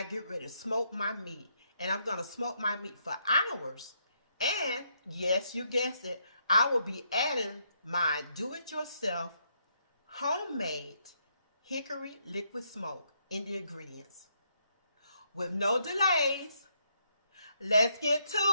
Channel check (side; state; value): both; inverted; correlation -0.75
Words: get ready to smoke my meat. And I'm going to smoke my meat for hours. And yes, you guessed it, I will be adding my do-it-yourself homemade hickory liquid smoke in the ingredients. With no delays, let's get to